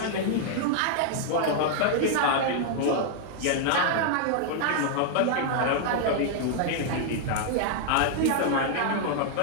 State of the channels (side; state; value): both; different; correlation -0.01